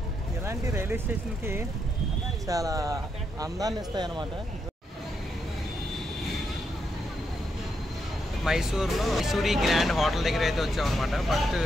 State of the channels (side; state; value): both; normal; correlation 0.81